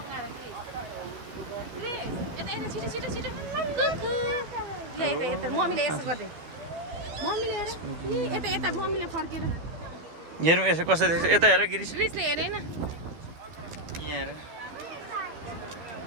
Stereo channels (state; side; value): late; left; 12 ms